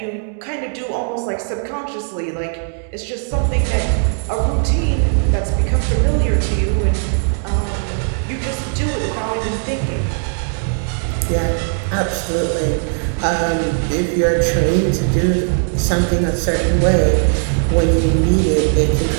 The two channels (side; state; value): left; silent; 60 dB below the other